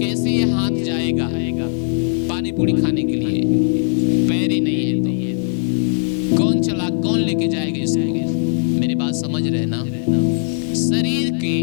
ये हाथ जाएगा पानी पूरी खाने के लिए? पैर ही नहीं है तो कौन लेके जाएगा इसको? मेरी बात समझ रहे ना? शरीर के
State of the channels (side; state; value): right; silent; digital silence